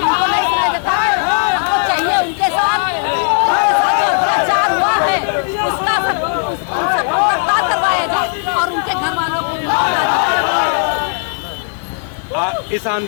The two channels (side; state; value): right; silent; digital silence